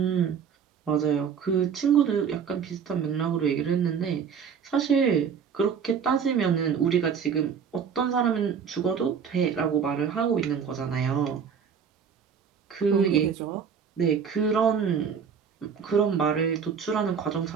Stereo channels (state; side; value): quieter; left; 6.9 dB